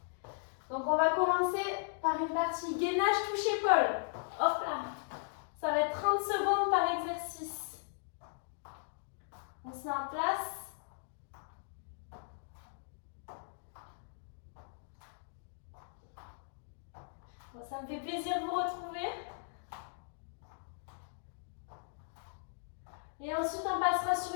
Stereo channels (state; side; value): silent; right; digital silence